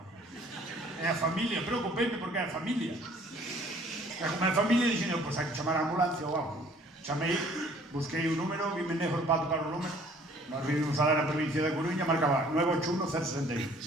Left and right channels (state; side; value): normal; both; correlation 0.56